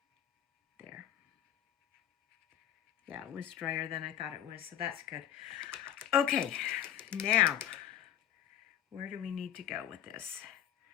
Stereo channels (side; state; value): right; quieter; 11.0 dB